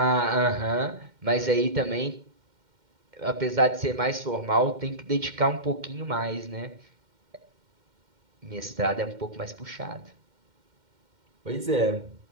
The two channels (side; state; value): left; late; 2.1 ms